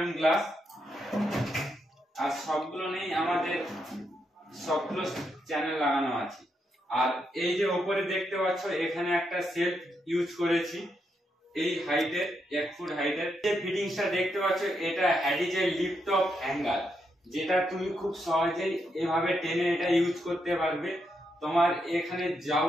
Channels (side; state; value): both; normal; correlation 0.81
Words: গ্লাস। আর সবগুলো নেই আমাদের সবগুলো চ্যানেল লাগানো আছে। আর এই যে উপরে দেখতে পাচ্ছ, এখানে একটা সেলফ ইউজ করেছি এই হাইটের, 1 ফুট হাইটের। যে ফিটিংসটা দেখতে পাচ্ছ, এটা হ্যাডিজের লিফট অফ হ্যাঙ্গার, যেটা তুমি খুব সহজেই এভাবে টেনে এটা ইউজ করতে পারবে। তোমার এখানে